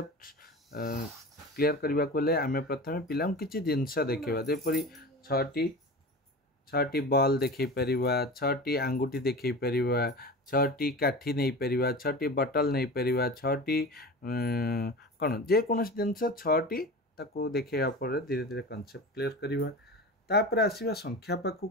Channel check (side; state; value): both; normal; correlation 0.32